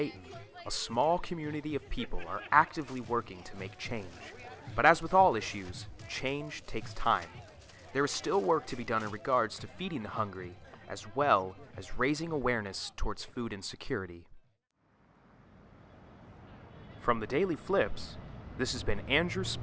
a small community of people are actively working to make change. But as with all issues, change takes time. There is still work to be done in regards to feeding the hungry, as well as raising awareness towards food insecurity. From the Daily Flips, this has been Andrew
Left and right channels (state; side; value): identical; both; correlation 1.00